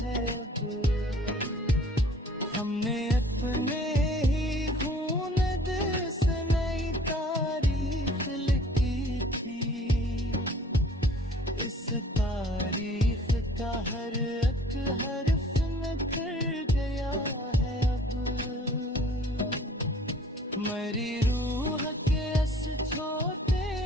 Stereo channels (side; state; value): both; normal; correlation 0.52